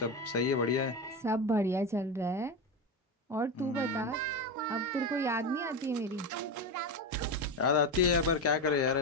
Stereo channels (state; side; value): normal; both; correlation 0.17